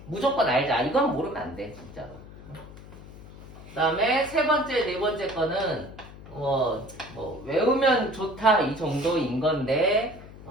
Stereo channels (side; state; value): left; noise; hum, 17 dB below the sound